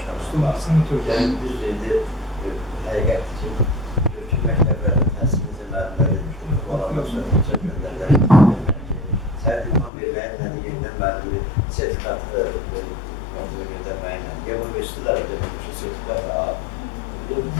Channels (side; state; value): right; drops out; at 9.9 s